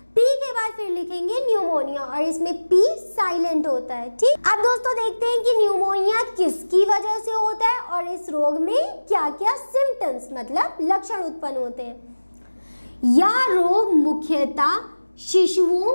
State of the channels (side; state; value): both; inverted; correlation -1.00